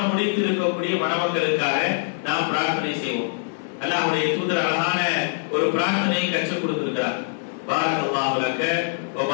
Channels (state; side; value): silent; right; digital silence